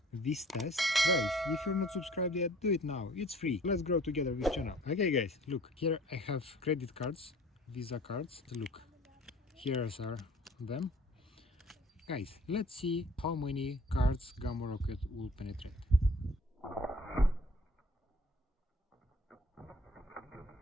this test. Guys, if you're not subscribed yet, do it now, it's free. Let's grow together with channel. Okay guys, look, here I have credit cards, Visa cards. Look, here are them. Guys, let's see how many cards Gamo Rocket will penetrate.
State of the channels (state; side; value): normal; both; correlation 0.51